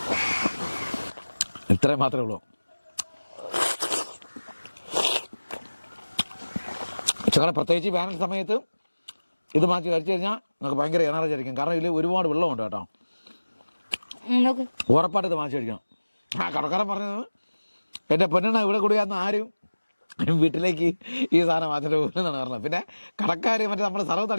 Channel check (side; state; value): both; inverted; correlation -1.00